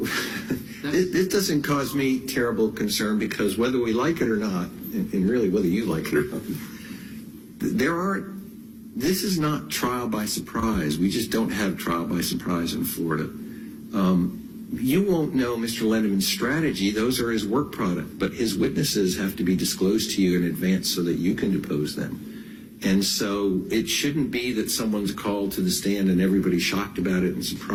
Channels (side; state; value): both; identical; correlation 1.00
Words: it doesn't cause me terrible concern, because whether we like it or not, and really whether you like it or not, this is not trial by surprise. We just don't have trial by surprise in Florida. You won't know Mr. Lendeman's strategy. Those are his work product. But his witnesses have to be disclosed to you in advance so that you can depose them. And so it shouldn't be that someone's called to the stand and everybody's shocked about it and